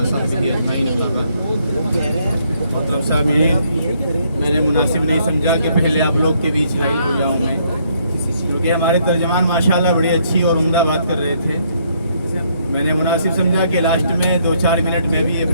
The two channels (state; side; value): inverted; both; correlation -0.70